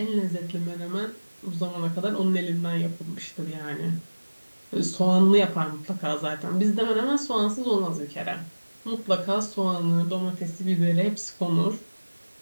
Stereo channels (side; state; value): both; inverted; correlation -1.00